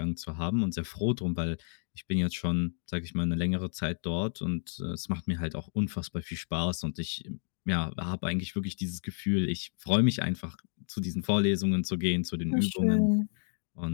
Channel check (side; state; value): right; silent; digital silence